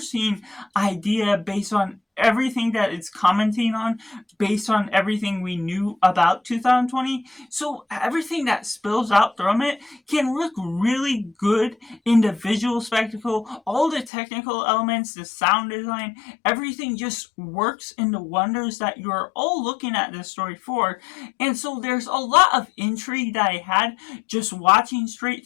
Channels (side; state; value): right; drops out; at 14.1 s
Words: idea based on everything that it's commenting on, based on everything we knew about 2020. So everything that spills out from it can look really good in the visual spectacle. All the technical elements, the sound design, everything just works in the wonders that you're all looking at this story for. And so there's a lot of intrigue that I had just watching straight